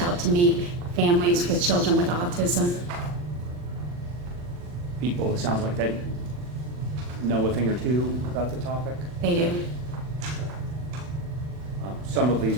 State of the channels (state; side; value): late; left; 40 ms